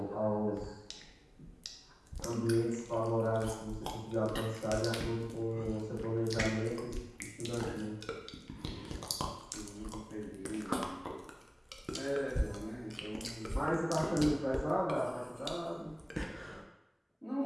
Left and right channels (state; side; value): identical; both; correlation 1.00